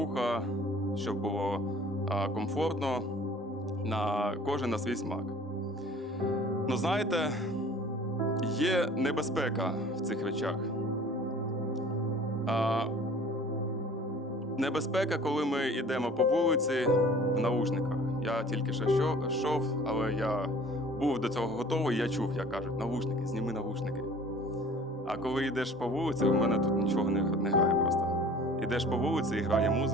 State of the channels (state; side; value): normal; both; correlation 0.48